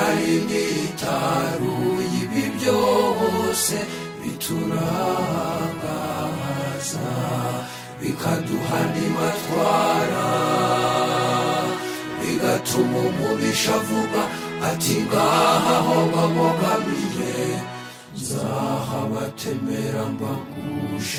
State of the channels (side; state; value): both; identical; correlation 1.00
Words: nitaruye ibi byose biturangaza bikaduha n'imatwara, bigatuma umubisha avuga ati ngaha ho bamugamiye nzahabatemera